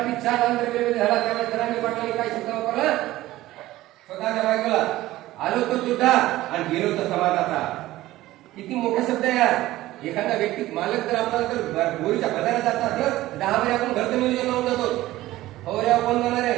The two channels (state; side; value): quieter; left; 16.3 dB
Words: 4 आंध्र झाला त्यावेळेस जरांगे पाटलांनी काय शब्द वापरला? स्वतःच्या बायकोला आलो तो तुझा आणि गेलो तो समाजाचा. किती मोठा शब्द आहे यार. एखादा व्यक्ती मालक जर आपल्याला जर बोरीच्या बाजारात जात असलं 10 वेळा आपण घरचं नियोजन लावून जातो. फवाऱ्या कोण जाणार